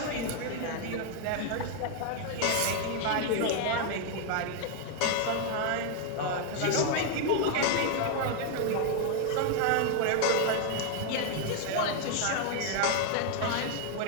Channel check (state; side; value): different; both; correlation 0.01